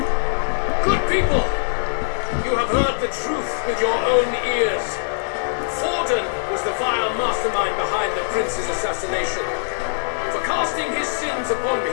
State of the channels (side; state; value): right; silent; digital silence